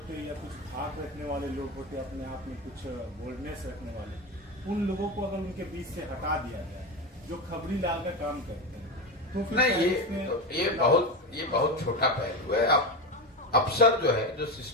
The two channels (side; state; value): both; normal; correlation 0.18